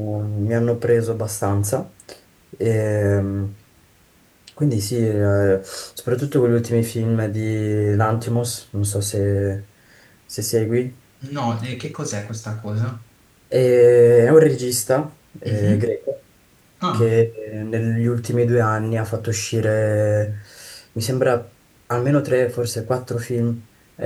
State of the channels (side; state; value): both; identical; correlation 1.00